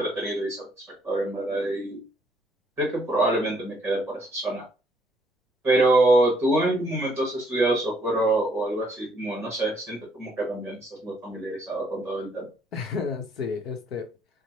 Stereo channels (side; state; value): both; normal; correlation 0.68